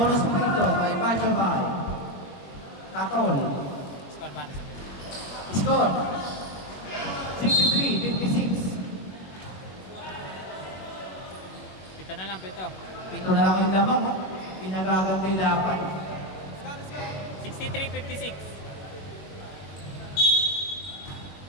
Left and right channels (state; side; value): late; right; 21 ms